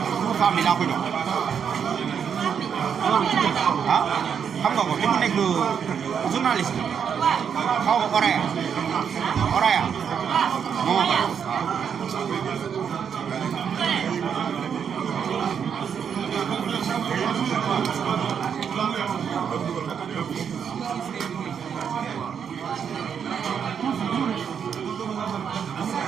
femme bi laa ko jox ah xam nga ko te mu nekk journaliste xaw ma Oraya moo ko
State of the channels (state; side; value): quieter; left; 7.4 dB